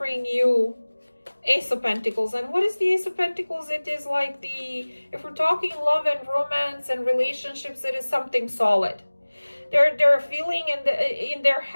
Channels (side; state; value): both; inverted; correlation -1.00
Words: you Ace of Pentacles. And what is the Ace of Pentacles? It is like if we're talking love and romance and relationships, it is something solid. They're feeling in their